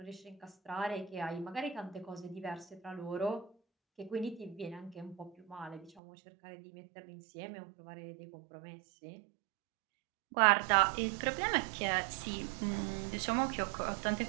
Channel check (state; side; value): drops out; left; at 6.0 s